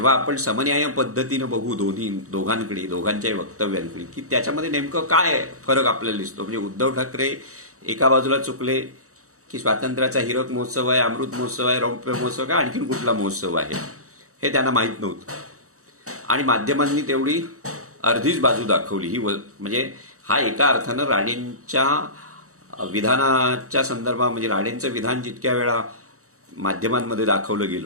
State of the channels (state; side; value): late; left; 0.65 ms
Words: आपण समन्याय पद्धतीनं बघू दोघांकडे दोघांच्याही वक्तव्यांकडे की त्याच्यामध्ये नेमकं काय फरक आपल्याला दिसतो. म्हणजे उद्धव ठाकरे एका बाजूला चुकले की स्वातंत्र्याचा हिरक महोत्सव आहे, अमृत महोत्सव आहे, रौप्य महोत्सव आहे, आणखीन कुठला महोत्सव आहे हे त्यांना माहीत नव्हतं. आणि माध्यमांनी तेवढी अर्धीच बाजू दाखवली. ही म्हणजे हा एका अर्थानं राणेंच्या विधानाच्या संदर्भात म्हणजे राणेंचं विधान जितक्या वेळा माध्यमांमध्ये दाखवलं